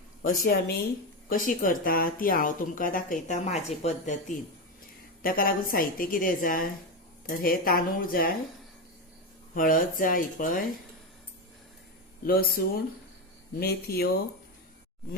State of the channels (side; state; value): both; normal; correlation 0.14